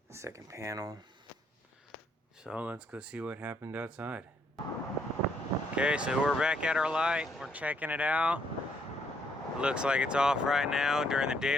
Second panel. So let's go see what happened outside. Okay, so we're back at our light. We're checking it out. It looks like it's off right now during the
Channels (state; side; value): normal; both; correlation 0.71